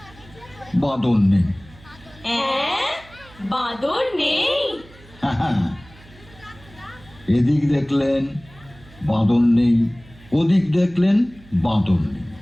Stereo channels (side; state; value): right; noise; hum, 23 dB below the sound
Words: বাঁদর নেই। বাঁদর নেই? এদিক দেখলেন বাঁদর নেই, ওদিক দেখলেন বাঁদর নেই।